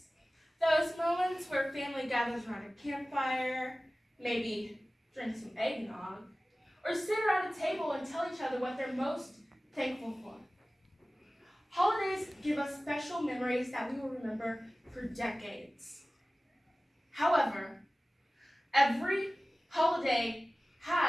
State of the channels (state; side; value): normal; both; correlation 0.97